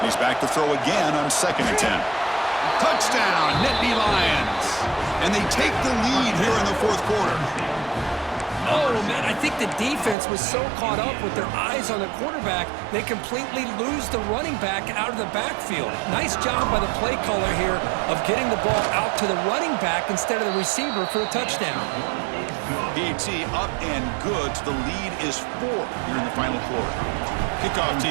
He's back to throw again on 2nd and 10. Touchdown, Nittany Lions. And they take the lead here in the fourth quarter. Oh, man, I think the defense was so caught up with their eyes on the quarterback, they completely lose the running back out of the backfield. Nice job by the play caller here of getting the ball out to the running back instead of the receiver for a touchdown. PAT up and good. The lead is 4 here in the final quarter. Kickoff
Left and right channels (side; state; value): left; drops out; at 10.2 s